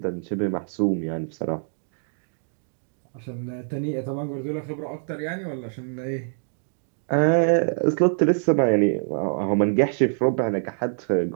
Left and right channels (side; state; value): left; silent; digital silence